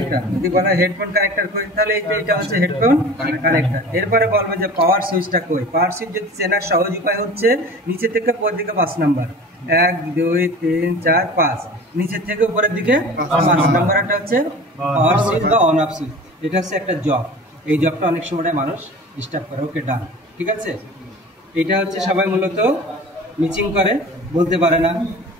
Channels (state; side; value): normal; both; correlation 0.39